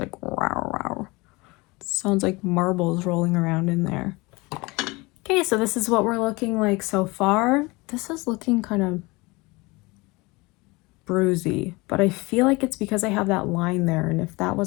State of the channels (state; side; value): quieter; right; 24.2 dB